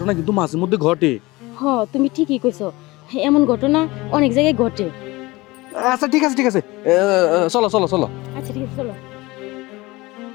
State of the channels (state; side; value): quieter; right; 21.3 dB